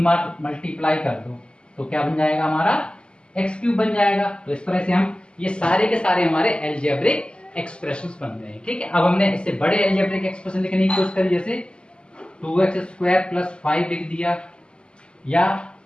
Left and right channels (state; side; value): late; right; 0.051 ms